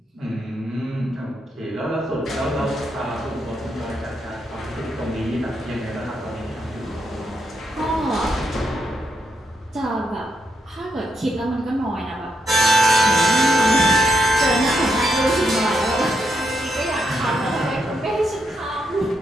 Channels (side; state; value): both; normal; correlation 0.81